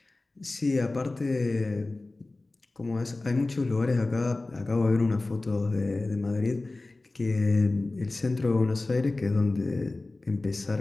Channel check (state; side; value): quieter; right; 3.1 dB